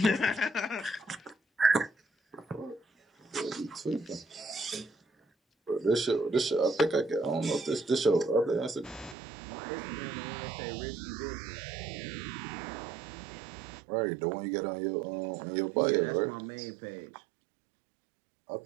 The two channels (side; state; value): left; drops out; at 9.2 s